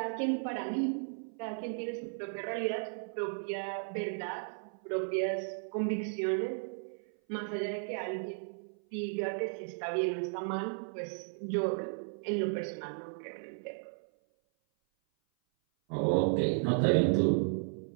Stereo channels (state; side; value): silent; left; 55 dB below the other